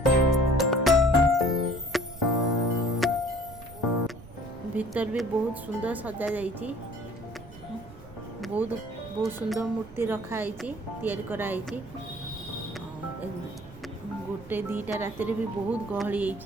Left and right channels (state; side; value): noise; right; rumble, 18 dB below the sound